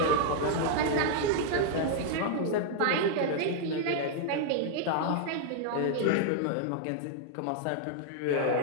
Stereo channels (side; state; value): both; different; correlation 0.00